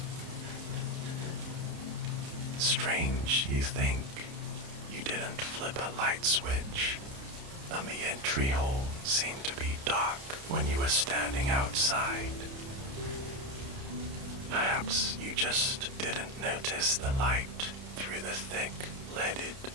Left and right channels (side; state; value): left; late; 30 ms